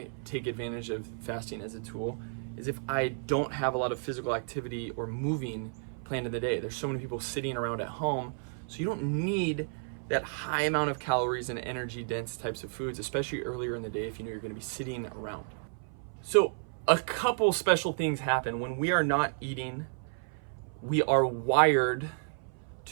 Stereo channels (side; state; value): left; silent; 56 dB below the other